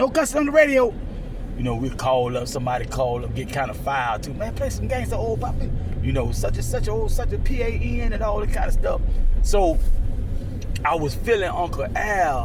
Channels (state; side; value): identical; both; correlation 1.00